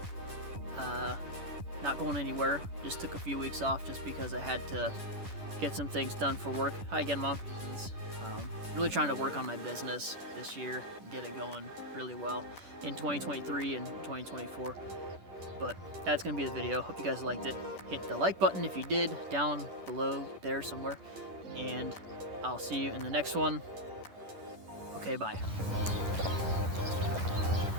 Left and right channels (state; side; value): late; left; 10 ms